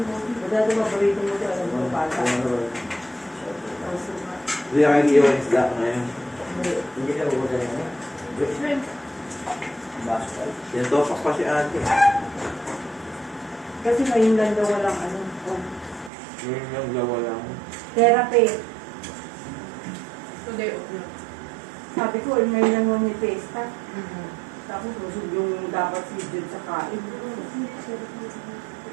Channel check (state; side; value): drops out; left; at 16.1 s